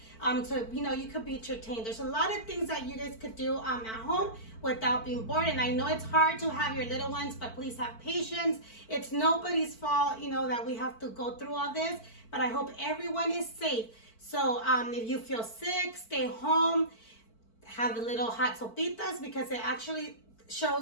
so you could be entertained. There's a lot of things that you guys could do at home without being bored. And I know it's hard to have your little ones, but please have patience. It's nobody's fault, that we have to go through all this. But I hope everyone is safe. So if you feel sick, stay home. Have the little hot sopitas because it actually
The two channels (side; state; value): right; late; 4.5 ms